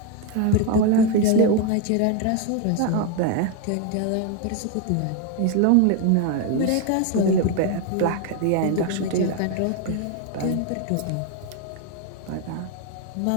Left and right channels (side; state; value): both; different; correlation 0.01